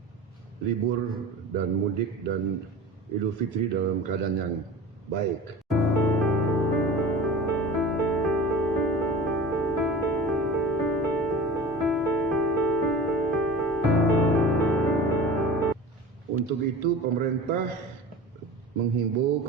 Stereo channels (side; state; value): both; normal; correlation 0.36